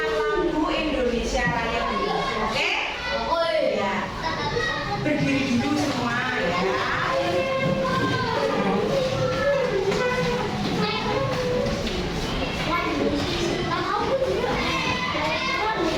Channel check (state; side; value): identical; both; correlation 1.00